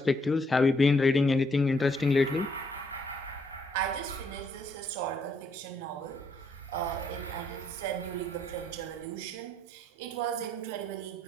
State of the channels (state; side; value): normal; both; correlation 0.71